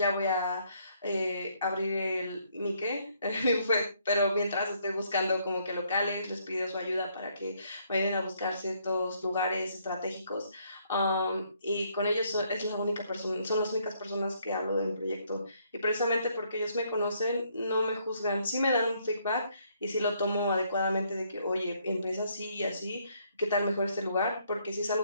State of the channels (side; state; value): both; inverted; correlation -0.70